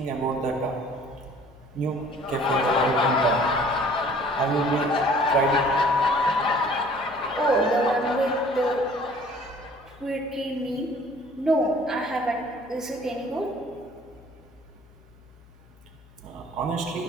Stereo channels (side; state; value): left; noise; hum, 26 dB below the sound